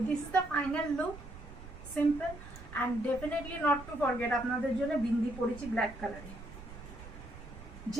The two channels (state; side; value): noise; right; rumble, 14 dB below the sound